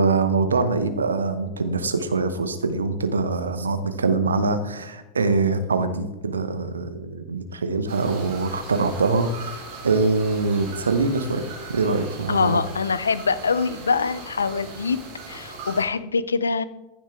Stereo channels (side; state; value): both; inverted; correlation -0.60